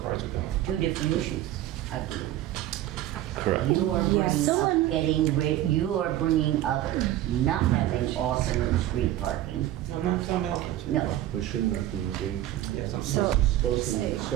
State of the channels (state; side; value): quieter; left; 13.5 dB